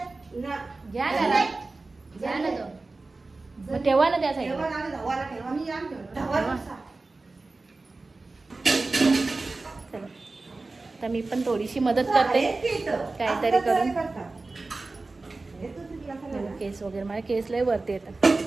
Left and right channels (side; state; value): left; quieter; 3.5 dB